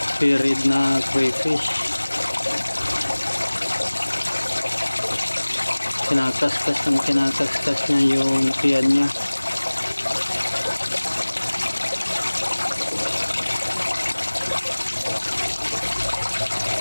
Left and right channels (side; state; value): both; inverted; correlation -1.00